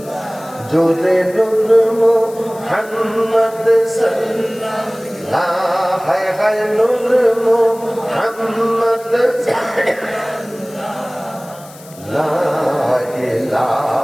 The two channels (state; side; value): noise; left; hiss, 21 dB below the sound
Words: জোরে নূর মুহাম্মদ সাল্লাল্লাহু হায় হায় নূর মুহাম্মদ লা